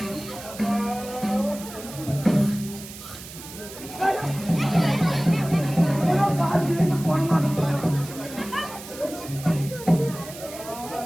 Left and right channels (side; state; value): right; noise; hiss, 14 dB below the sound